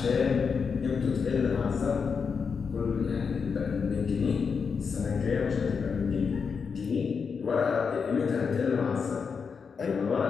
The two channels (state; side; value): quieter; right; 5.8 dB